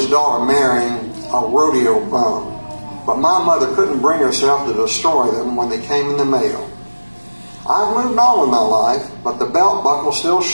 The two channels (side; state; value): both; inverted; correlation -1.00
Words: daughter marrying a rodeo bum, but my mother couldn't bring herself to destroy them when they came in the mail. I've moved on with my life, but the belt buckle still